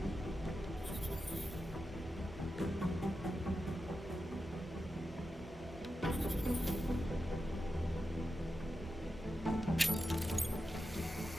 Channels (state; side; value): normal; both; correlation 0.90